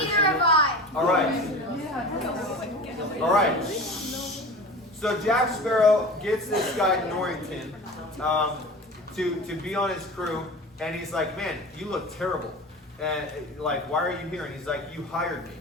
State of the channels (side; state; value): both; normal; correlation 0.35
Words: Neither have I. All right. All right. So Jack Sparrow gets this guy Norrington to be on his crew, and he's like, "Man, you look terrible. And like, why are you here?" And he's like, "You hired me."